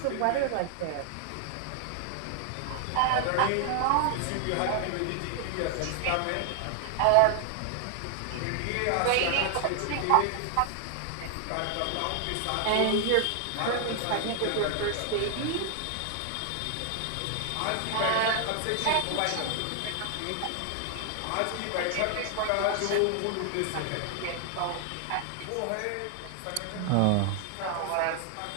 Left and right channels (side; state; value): both; different; correlation 0.00